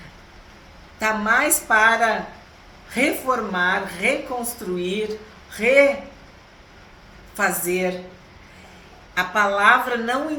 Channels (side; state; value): both; identical; correlation 1.00